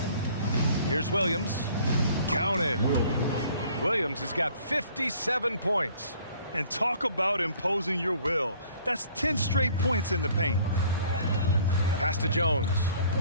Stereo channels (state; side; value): inverted; both; correlation -0.55